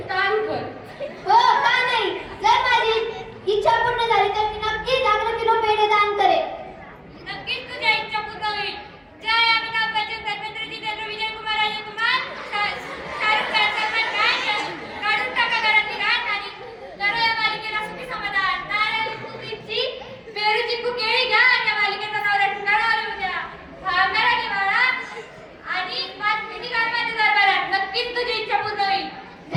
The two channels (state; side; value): identical; both; correlation 1.00